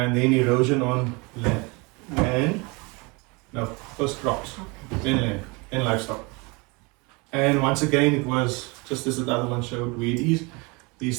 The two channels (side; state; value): left; quieter; 27.8 dB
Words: then erosion on land, no, first crops, then land, and livestock. And once again, it was just as the other one showed where it is.